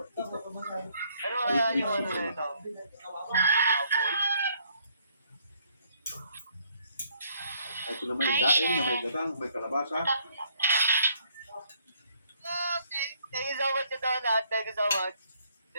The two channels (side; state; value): both; inverted; correlation -0.66